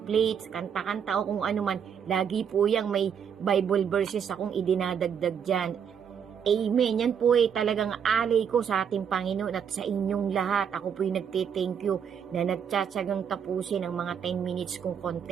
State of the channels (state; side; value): quieter; left; 7.7 dB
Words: kanta-kanta o kung ano man, lagi po yang may Bible verses akong idinadagdag dyan. Amen. Yan po ay talagang alay ko sa ating Panginoon at sa inyong lahat. Ako po ay nagte-thank you na nagtsatsagang tapusin ang mga 10 minutes kong